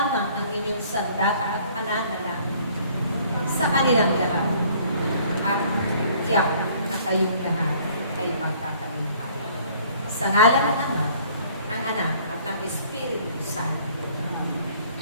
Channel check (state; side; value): inverted; both; correlation -0.57